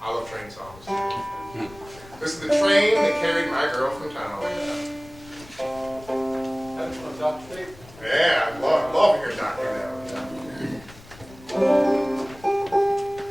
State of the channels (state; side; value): noise; left; rumble, 21 dB below the sound